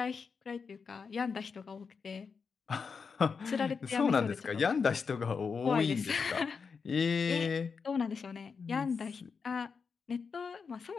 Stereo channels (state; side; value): quieter; right; 5.5 dB